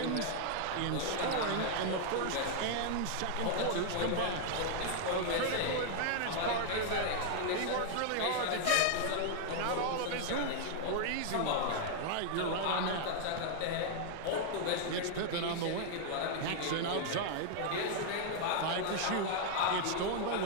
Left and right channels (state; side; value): different; both; correlation 0.00